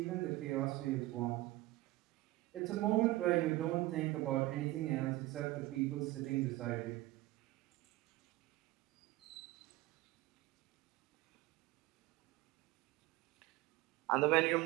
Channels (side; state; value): left; quieter; 18.6 dB